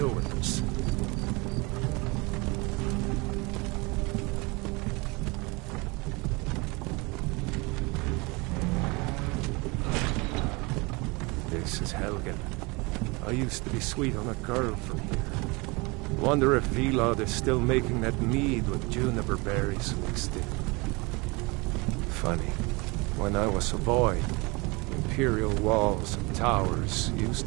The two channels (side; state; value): left; quieter; 26.6 dB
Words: with this. This is Helgen. I used to be sweet on a girl from here. Wonder if Vilod is still making that mead with juniper berries mixed in. Funny, when I was a boy, Imperial walls and towers